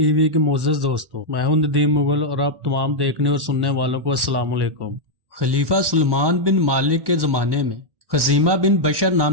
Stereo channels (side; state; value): left; late; 1.1 ms